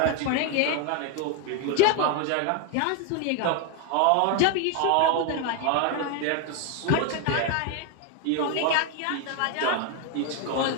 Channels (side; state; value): both; different; correlation 0.01